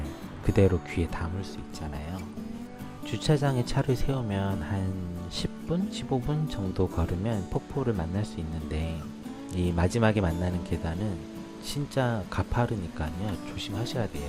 그대로 귀에 담을 수 있잖아요. 주차장에 차를 세우면 한 10분, 15분 정도 걸으면 폭포를 만날 수 있는데 이 마지막에 만나는 계단은 진짜 가파르니까요. 조심하셔야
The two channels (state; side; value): identical; both; correlation 1.00